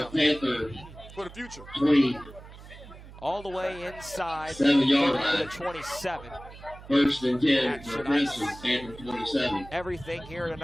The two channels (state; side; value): noise; right; hum, 17 dB below the sound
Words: for the future. All the way inside the 27. 1st and 10 for Princeton, Panther 27. Everything here